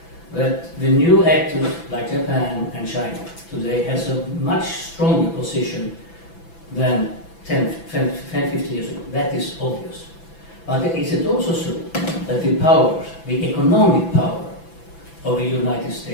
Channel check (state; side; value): late; right; 6.0 ms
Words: that the new actors like Japan and China today has a much stronger position than 10, 15 years ago? That is obvious. But is it also true that the power, the economic power of the United